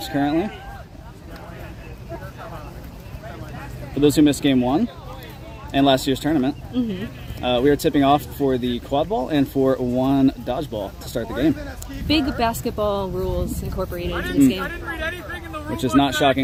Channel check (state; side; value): identical; both; correlation 1.00